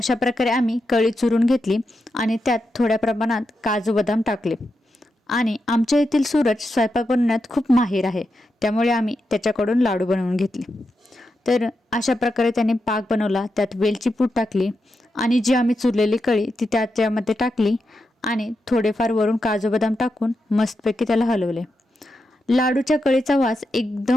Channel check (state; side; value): normal; both; correlation 0.87